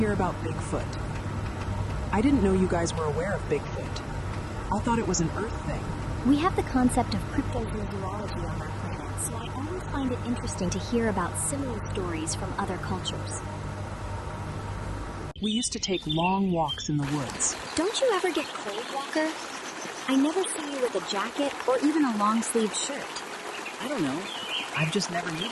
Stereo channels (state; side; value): identical; both; correlation 1.00